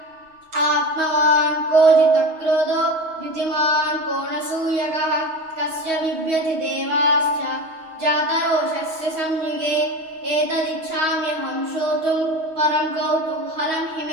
ఆత్మవాన్ కో జితక్రోధో ద్యుతిమాన్ కో నసూయకః కస్య బిభ్యతి దేవాశ్చ జాతరోషస్య సంయుగే ఏతదిచ్ఛామ్యహం శ్రోతుం పరం కౌతూహలం हि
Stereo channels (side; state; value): left; late; 6.3 ms